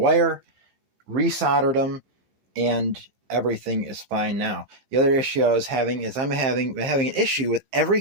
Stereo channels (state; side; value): late; left; 15 ms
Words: Resoldered them, and everything is fine now. The other issue I was having is I'm having an issue with